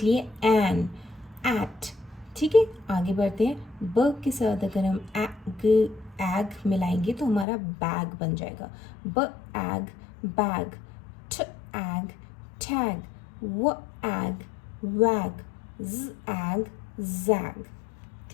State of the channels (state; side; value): drops out; right; at 7.5 s